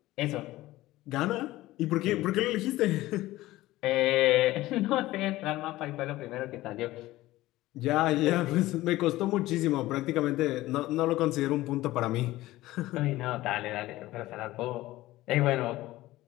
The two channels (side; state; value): right; quieter; 17.1 dB